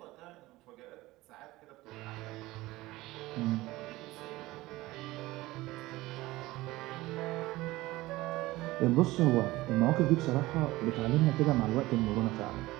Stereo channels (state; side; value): quieter; left; 18.8 dB